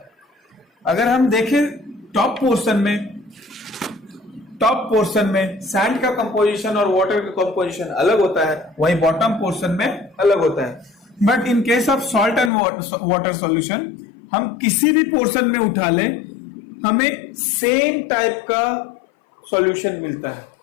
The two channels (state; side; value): drops out; right; at 12.5 s